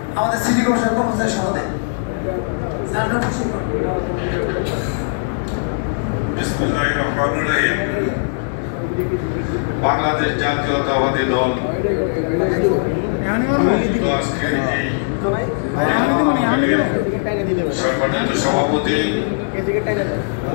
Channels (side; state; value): right; silent; digital silence